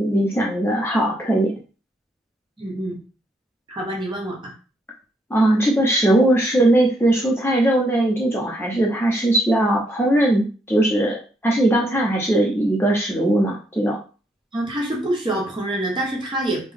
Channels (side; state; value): both; normal; correlation 0.74